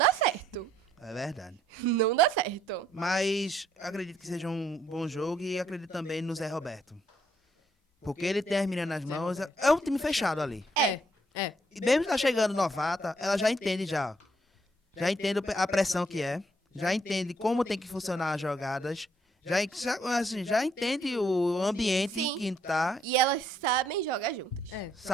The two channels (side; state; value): both; normal; correlation 0.70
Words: certo. É verdade. Não dá certo. Mas acredito que seja um bom jogo e acredito também no Zé Roberto. Porque ele tem as meninas nas mãos. É um time fechado ali. é. E mesmo tá chegando novata, ela já entende já. Já entende a pressão que é. Já entende como tem que funcionar as jogadas. Já entende o ambiente Sim. que tá. E elas sabem jogar juntas. É.